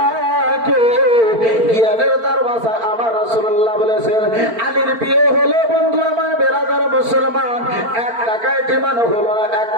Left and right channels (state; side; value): late; left; 4.4 ms